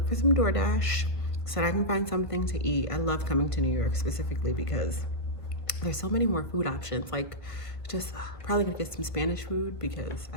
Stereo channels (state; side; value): late; right; 1.8 ms